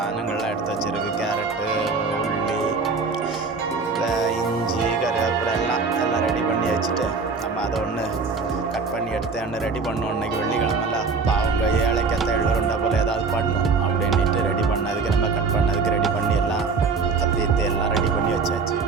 எடுத்து வச்சுருக்கு. கேரட்டு, உள்ளி, இஞ்சி, கருவேப்பிலை எல்லாம் ரெடி பண்ணி வச்சுட்டு நம்ம அதை ஒன்று கட் பண்ணி எடுத்து ஒன்று ரெடி பண்ணோம். இன்றைக்கி வெள்ளிக்கிழமைல அவங்க ஏழைக்கத்த எள்ளுருண்டை போல் ஏதாவது பண்ணும் அப்படின்ட்டு ரெடி பண்ணதுக்கு நம்ம கட் பண்ணதுக்கு ரெடி பண்ணி எல்லாம் கத்தித்து எல்லாம் ரெடி பண்ணி வச்சாச்சு.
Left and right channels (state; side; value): quieter; left; 4.6 dB